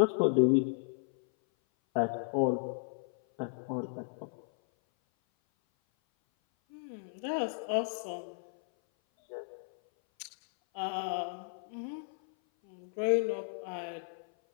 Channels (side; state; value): right; silent; 55 dB below the other